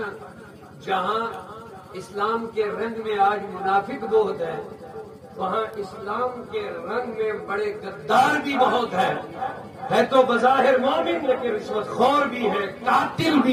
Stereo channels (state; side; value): identical; both; correlation 1.00